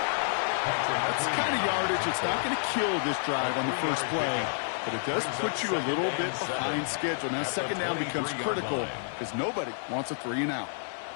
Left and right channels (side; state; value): right; silent; 57 dB below the other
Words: That's the kind of yardage. It's not going to kill this drive on the first play, but it does put you a little bit behind schedule. Now 2nd down becomes critical because nobody wants a 3 and out.